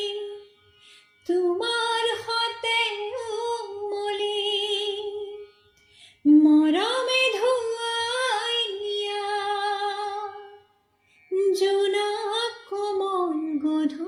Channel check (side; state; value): both; identical; correlation 1.00